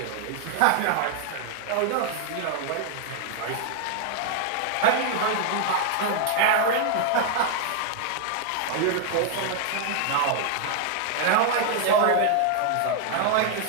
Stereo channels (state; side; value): different; both; correlation 0.00